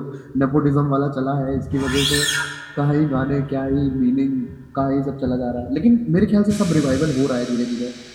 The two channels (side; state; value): both; identical; correlation 1.00